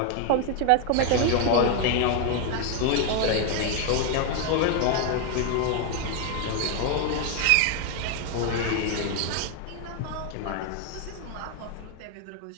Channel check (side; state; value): both; different; correlation 0.01